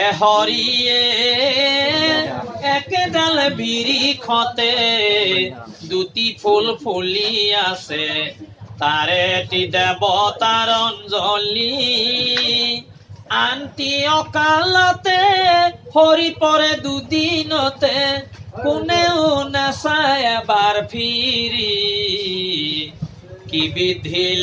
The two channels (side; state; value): both; identical; correlation 1.00